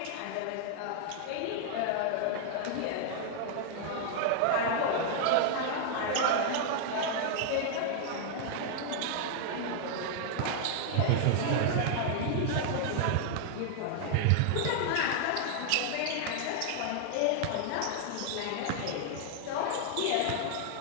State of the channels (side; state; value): both; different; correlation 0.00